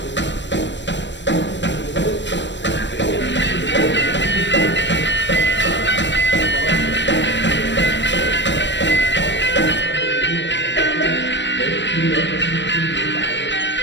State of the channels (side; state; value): right; late; 0.53 ms